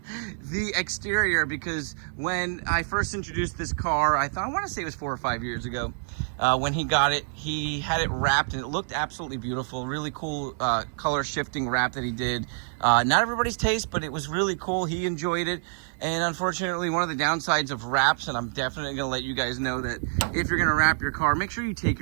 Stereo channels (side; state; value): left; silent; digital silence